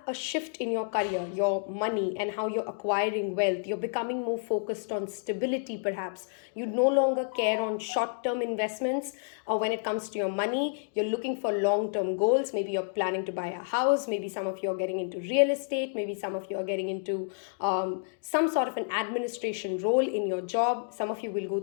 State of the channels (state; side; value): silent; right; digital silence